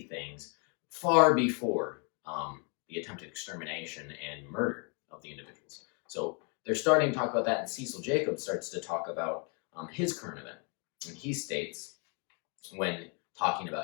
things far before the attempted extermination and murder of the individuals. So they're starting to talk about that, and Cecil Jacobs starts to talk about his current event. And he states, when talking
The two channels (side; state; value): right; quieter; 36.3 dB